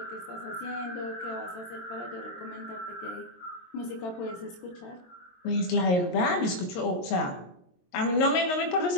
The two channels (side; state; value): right; late; 22 ms